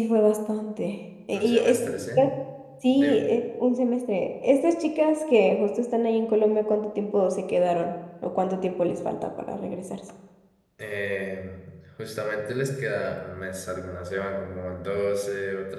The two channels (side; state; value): both; identical; correlation 1.00